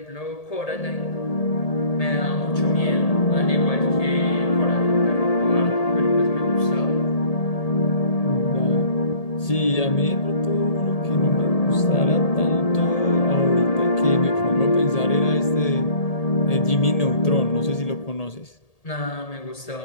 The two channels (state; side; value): late; right; 1.8 ms